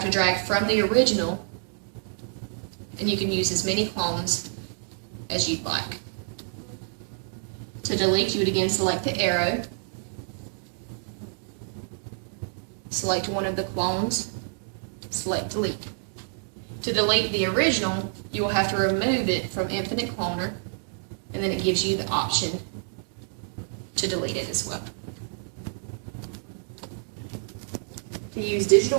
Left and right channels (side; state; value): left; silent; digital silence